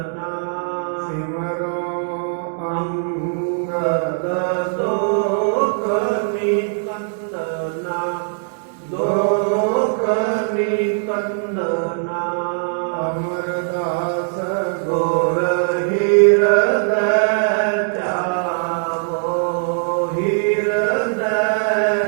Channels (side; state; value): left; silent; digital silence